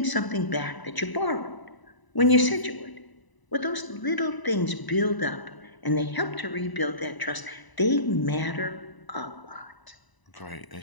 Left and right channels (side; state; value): right; late; 1.0 ms